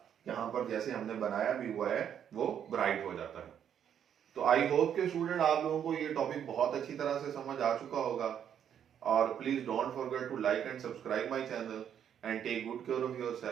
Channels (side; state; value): left; quieter; 9.0 dB